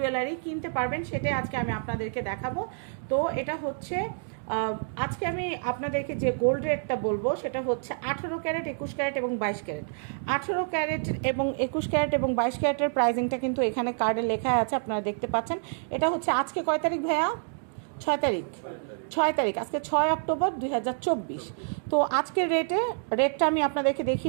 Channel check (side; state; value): left; silent; digital silence